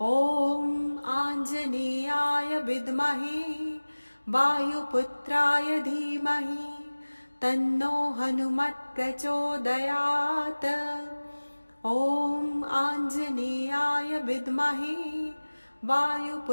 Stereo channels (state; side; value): inverted; both; correlation -1.00